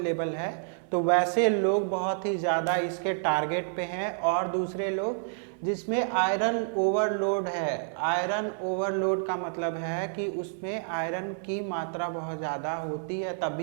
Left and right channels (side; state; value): left; silent; 59 dB below the other